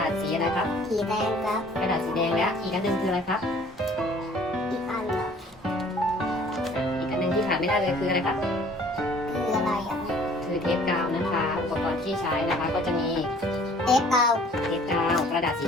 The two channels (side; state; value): both; normal; correlation 0.54